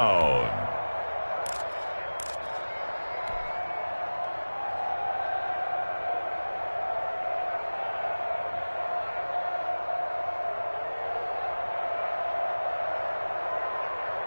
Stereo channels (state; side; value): inverted; both; correlation -1.00